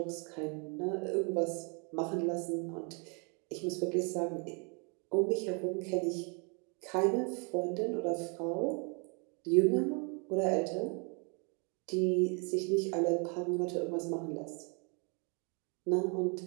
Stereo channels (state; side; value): quieter; left; 35.5 dB